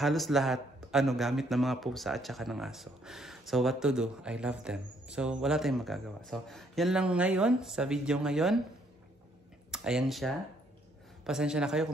lahat gamit ng mga pusa at saka ng aso. So what to do? I love them. So wala tayong magagawa. So yan lang ngayon sa video ngayon. Ayan siya. Pasensya na kayo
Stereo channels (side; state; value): both; normal; correlation 0.68